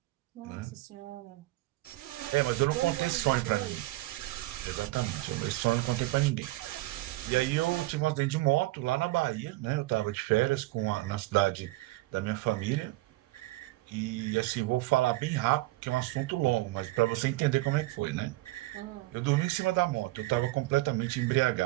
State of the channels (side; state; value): left; quieter; 19.3 dB